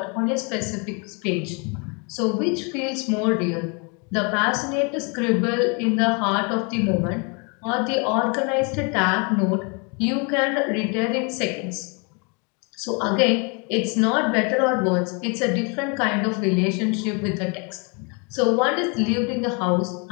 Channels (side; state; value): right; quieter; 33.6 dB